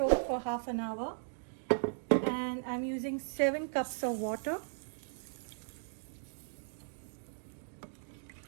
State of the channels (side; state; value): left; silent; digital silence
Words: for half an hour, and I'm using 7 cups of water.